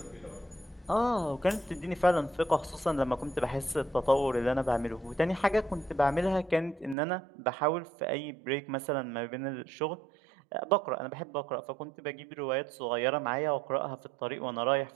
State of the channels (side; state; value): left; drops out; at 7.0 s